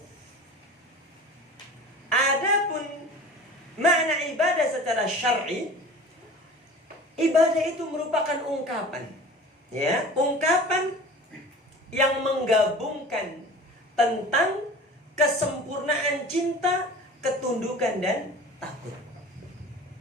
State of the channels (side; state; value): both; normal; correlation 0.40